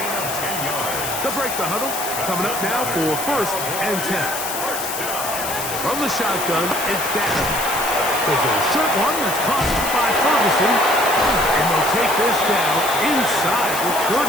They'll break the huddle. Coming up now for 1st and 10. From the shotgun, it's down. There's a short one that's caught by Ferguson. And they'll take this down inside the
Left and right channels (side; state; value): left; noise; hiss, 6 dB below the sound